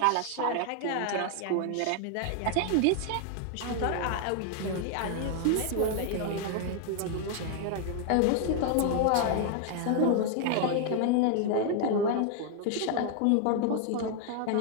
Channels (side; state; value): both; different; correlation 0.00